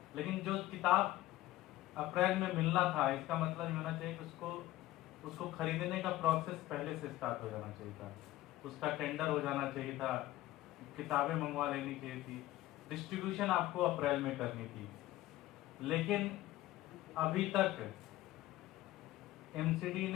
लेकिन जो किताब अप्रैल में मिलना था, इसका मतलब ये होना चाहिए कि उसको खरीदने का प्रोसेस पहले से स्टार्ट हो जाना चाहिए था, उसका टेंडर हो जाना चाहिए था, किताबें मंगवा लेनी चाहिए थी, डिस्ट्रीब्यूशन आपको अप्रैल में करनी थी। लेकिन अभी तक एमसीडी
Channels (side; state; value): right; quieter; 16.0 dB